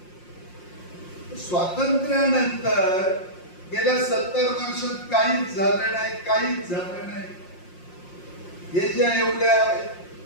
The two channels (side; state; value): right; late; 5.6 ms